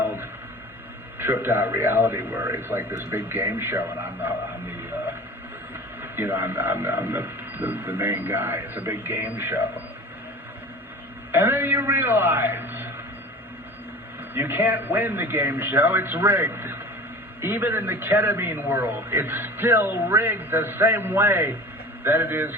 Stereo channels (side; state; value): both; normal; correlation 0.39